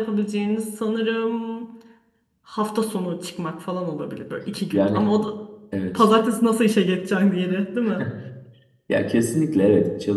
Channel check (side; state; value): both; identical; correlation 1.00